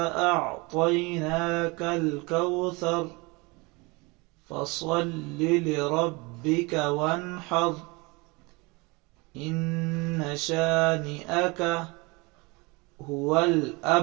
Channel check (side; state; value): left; quieter; 26.3 dB